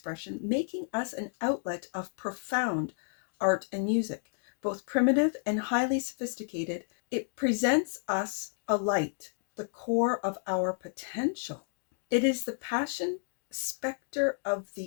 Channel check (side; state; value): right; silent; digital silence